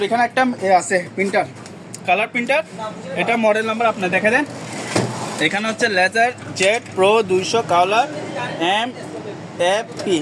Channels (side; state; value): both; identical; correlation 1.00